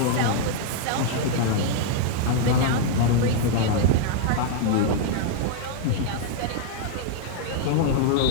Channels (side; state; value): both; different; correlation 0.00